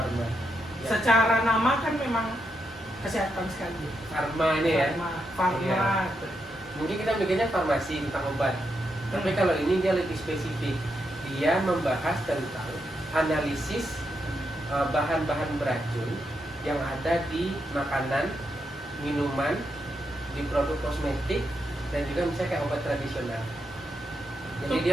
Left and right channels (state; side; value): normal; both; correlation 0.82